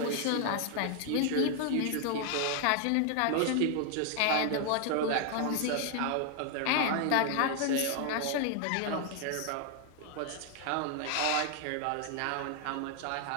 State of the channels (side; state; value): both; different; correlation 0.00